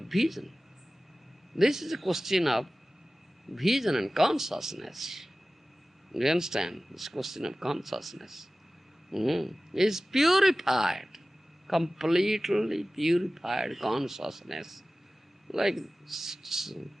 This is a question of vision and consciousness. Do you understand? This question of consciousness. Is purified, completely purified consciousness. Like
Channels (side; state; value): both; normal; correlation 0.96